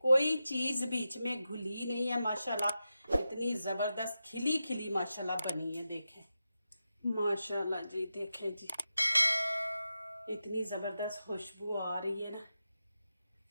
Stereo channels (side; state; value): both; inverted; correlation -0.90